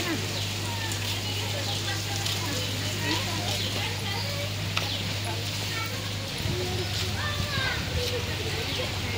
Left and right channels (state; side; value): identical; both; correlation 1.00